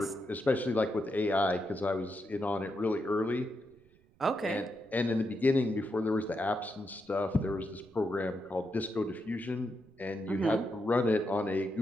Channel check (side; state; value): right; noise; rumble, 30 dB below the sound